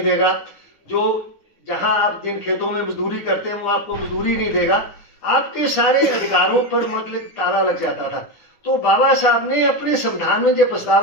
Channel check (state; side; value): late; right; 10 ms